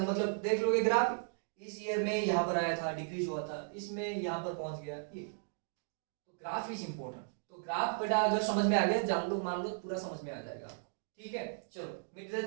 मतलब देख लोगे ग्राफ, इस ईयर में यहाँ पर आया था, डिक्रीज हुआ था, इसमें यहाँ पर पहुंच गया, ये तो ग्राफ इज इंपॉर्टेंट। तो ग्राफ बेटा अगर समझ में आ गया, जान लो मान लो पूरा समझ में आ जाएगा आपको, ठीक है। चलो मिटा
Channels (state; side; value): silent; left; digital silence